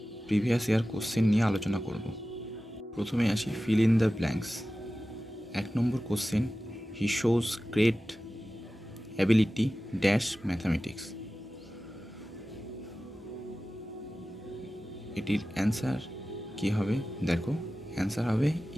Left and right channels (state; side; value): normal; both; correlation 0.95